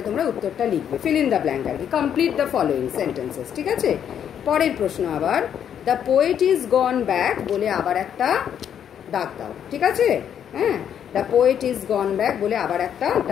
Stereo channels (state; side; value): quieter; right; 9.0 dB